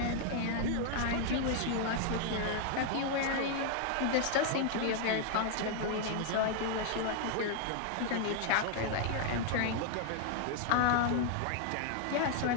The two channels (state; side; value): different; both; correlation 0.00